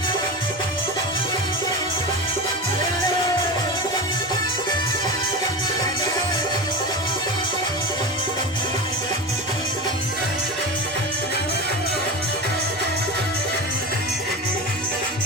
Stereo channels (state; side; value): normal; both; correlation 0.25